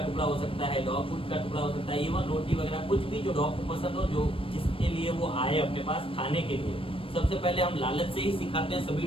टुकड़ा हो सकता है, डॉग फूड का टुकड़ा हो सकता है, इवन रोटी वगैरह, कुछ भी जो डॉग को पसंद हो, जो जिसके लिए वो आए अपने पास खाने के लिए। सबसे पहले हम लालच से ही सिखाते हैं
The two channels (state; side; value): late; right; 0.26 ms